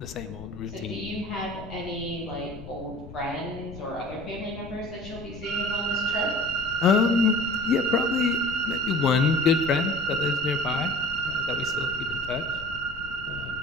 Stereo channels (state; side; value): noise; left; rumble, 14 dB below the sound